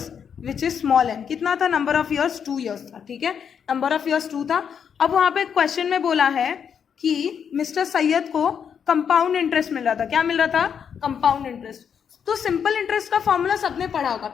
which is small n. कितना था नंबर ऑफ ईयर्स? 2 years था, ठीक है। नंबर ऑफ ईयर्स 2 था। अब वहां पे क्वेश्चन में बोला है कि मिस्टर सैयद को कंपाउंड इंटरेस्ट मिल रहा था। क्या मिल रहा था? Compound interest. तो सिंपल इंटरेस्ट का फॉर्मूला सबने पढ़ा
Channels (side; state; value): right; quieter; 7.5 dB